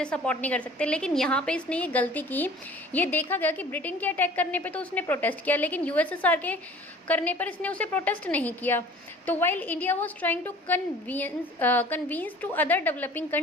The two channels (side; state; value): both; normal; correlation 0.48